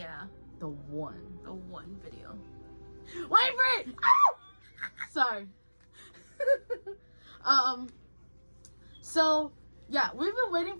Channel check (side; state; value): both; inverted; correlation -1.00